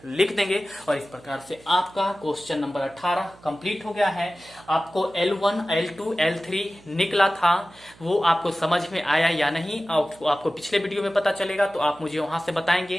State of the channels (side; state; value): right; noise; hum, 25 dB below the sound